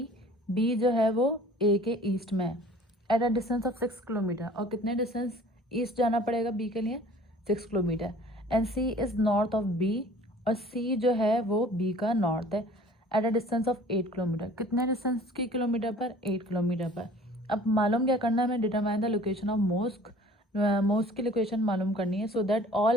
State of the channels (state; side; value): normal; both; correlation 0.49